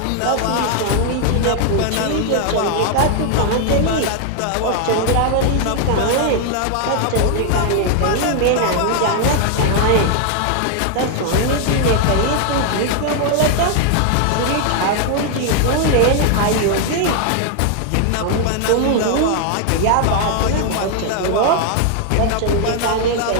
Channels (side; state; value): both; different; correlation 0.00